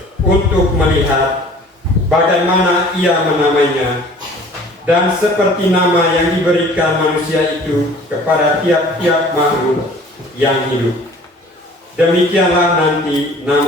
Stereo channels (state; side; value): normal; both; correlation 0.49